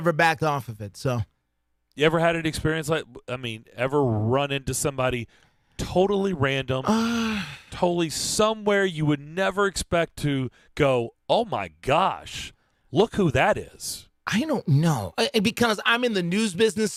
backed off of it. So, you ever had an experience ever run into somebody totally random, totally somewhere you would never expect to go, oh, my gosh, look who that is? I don't know. Because I'm in the news business,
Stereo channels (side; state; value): both; identical; correlation 1.00